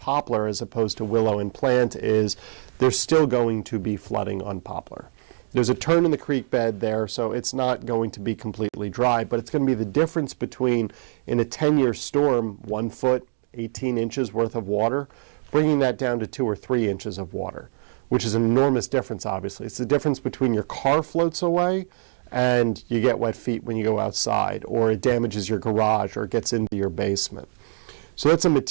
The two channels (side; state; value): left; silent; digital silence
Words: as opposed to Willow and Plant is there's still going to be flooding on Poplar. There's a turn in the creek bed there, so it's not going to be completely dry, but it's going to be the difference between, in a 10-year storm, 1 foot, 18 inches worth of water, bringing that down to 2 or 3 inches of water, which is an enormous difference, obviously. It's the difference between your car floats away and you get wet feet when you go outside, or it damages your garage, or it gets into your basement. So that's a